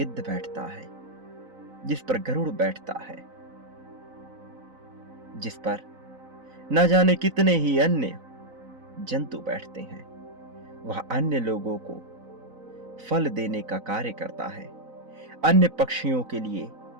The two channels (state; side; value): late; left; 4.0 ms